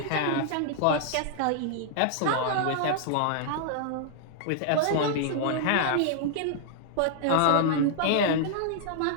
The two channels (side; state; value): both; different; correlation -0.01